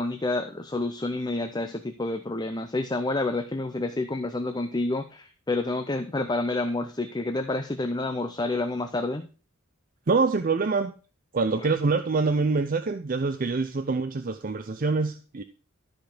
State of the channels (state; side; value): normal; both; correlation 0.43